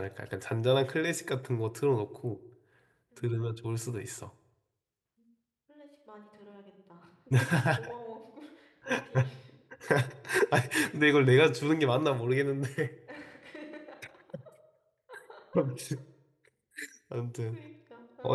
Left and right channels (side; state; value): both; identical; correlation 1.00